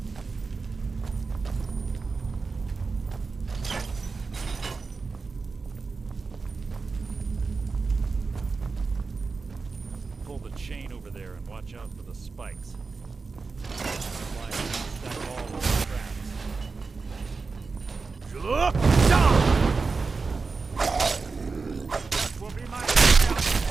Pull the chain over there and watch out for the spikes. Stack all those traps. That will be my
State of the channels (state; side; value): quieter; left; 4.4 dB